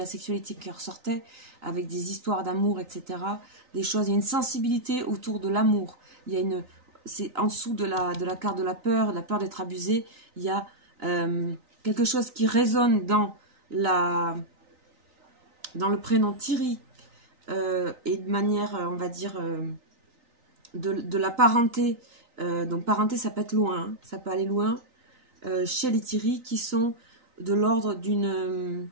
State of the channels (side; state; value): left; late; 3.9 ms